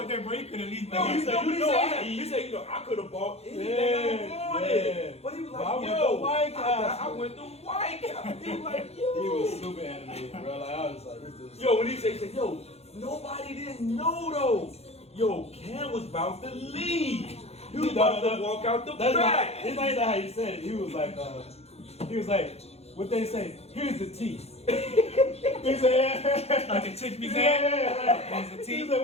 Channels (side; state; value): right; late; 0.30 ms